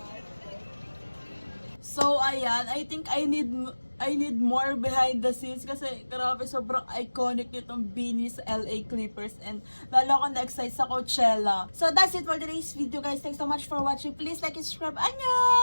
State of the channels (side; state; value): both; inverted; correlation -1.00